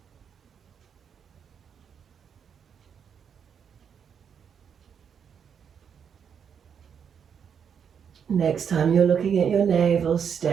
Next time you're looking at your navel,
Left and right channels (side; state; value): left; quieter; 7.4 dB